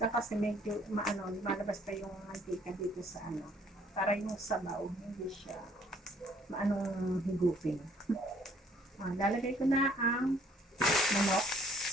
Kasi medyo lumalabas pa yung mantika dito sa para yung sabaw, hindi siya maanong higupin. Lalagay ko na ang manok.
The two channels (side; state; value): both; normal; correlation 0.61